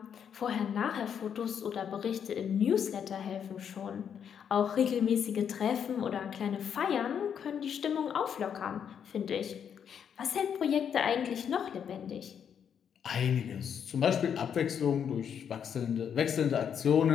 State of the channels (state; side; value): quieter; right; 8.0 dB